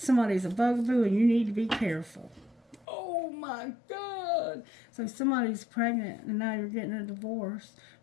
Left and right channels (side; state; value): right; drops out; at 2.9 s